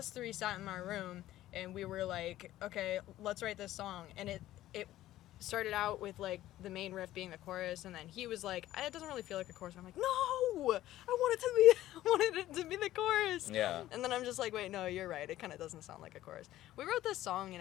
three sat in my room, and we were like, okay, let's write this song. And it started out with like the main riff being the chorus, and then he was like, it doesn't really feel like a chorus. And I'm like, no, I wanted it to be the chorus. Yeah. And then I'm just like, wait, no, you're right. It kind of doesn't sound like a chorus. We wrote this song in,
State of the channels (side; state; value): right; quieter; 14.4 dB